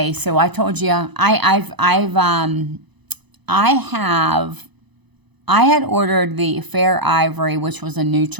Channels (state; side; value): late; left; 1.0 ms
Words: so I told you I had ordered the Fair Ivory, which was a